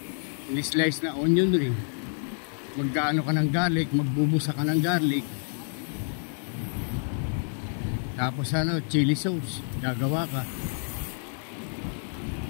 slice na onion ring. Magkaano ka ng garlic, magbubusa ka ng garlic. Tapos ano, chili sauce, gagawa ka.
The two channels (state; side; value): silent; right; digital silence